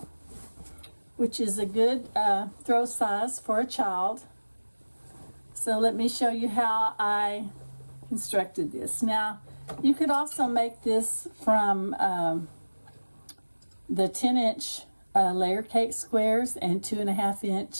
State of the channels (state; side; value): inverted; both; correlation -1.00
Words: which is a good throw size for a child. So let me show you how I constructed this. Now, you could also make this from the 10-inch layer cake squares and